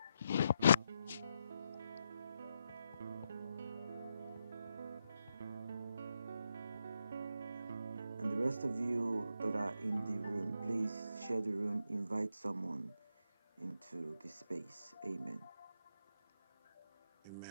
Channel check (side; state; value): both; inverted; correlation -0.82